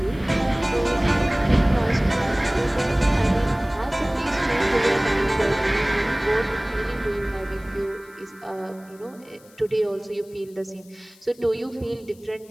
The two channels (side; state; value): left; noise; hiss, 27 dB below the sound